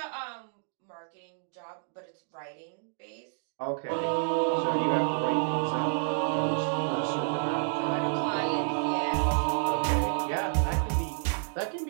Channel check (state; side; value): silent; left; digital silence